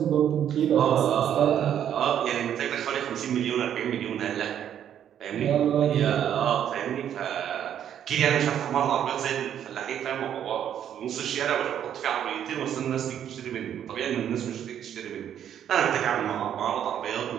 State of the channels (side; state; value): left; quieter; 9.8 dB